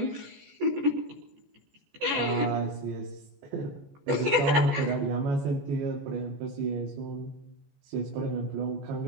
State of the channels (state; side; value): late; left; 14 ms